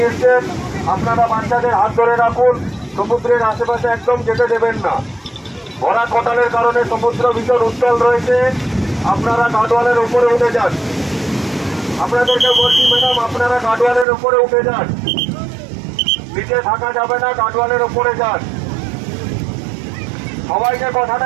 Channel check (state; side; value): drops out; left; at 14.1 s